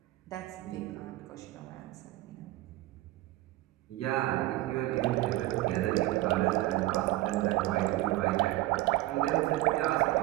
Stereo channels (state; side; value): quieter; left; 17.4 dB